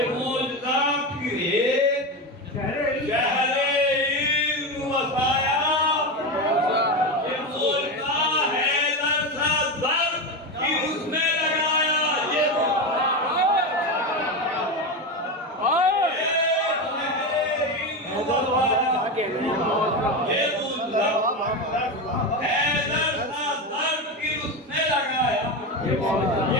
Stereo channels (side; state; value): both; normal; correlation 0.17